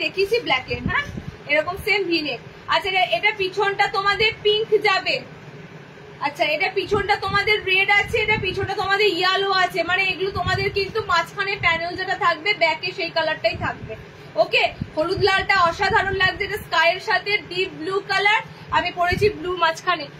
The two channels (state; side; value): identical; both; correlation 1.00